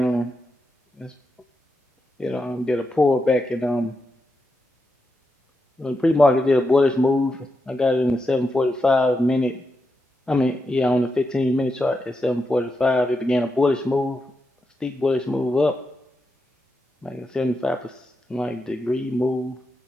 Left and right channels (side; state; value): both; normal; correlation 0.86